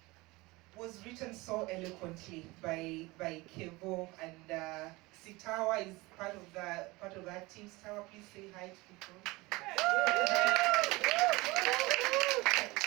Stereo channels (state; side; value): quieter; left; 22.4 dB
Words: was written so eloquently by Kevo, and Sitawa is part of that team. Sitawa, please say hi to people.